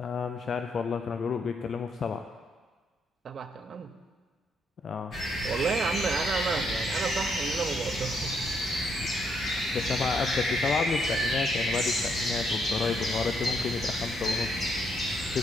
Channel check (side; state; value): both; normal; correlation 0.74